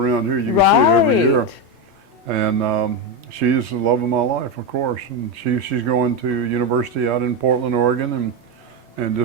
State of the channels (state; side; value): normal; both; correlation 0.10